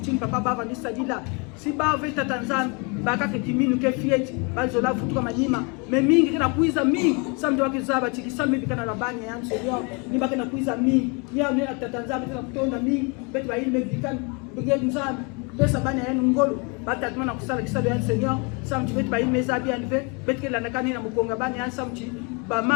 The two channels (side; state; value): right; quieter; 32.2 dB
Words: papa baba ni sadila si ba vita Tanzania baka ke kiminu ke fieti bazola futuka manyima me mingi kana kuiza mingi santu wakizaba tikisame bikana rabani ya Seigneur ni baka na kuiza mingi ni ya Tanzania tena kutonda mingi betu ba ile bikana bigeni nzana pesa bana ya ngolo batata na kusala kisalo ya Seigneur santu betu ba ile mezabi anve betu ke landakani na mukonga bani ya santu ba